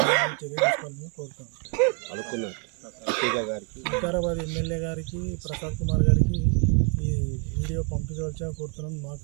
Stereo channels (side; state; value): left; quieter; 35.8 dB